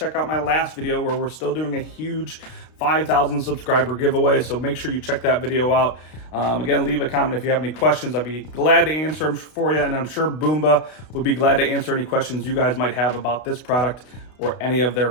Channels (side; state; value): right; late; 32 ms